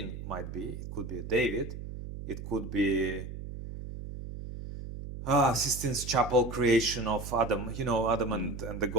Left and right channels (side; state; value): right; noise; hum, 9 dB below the sound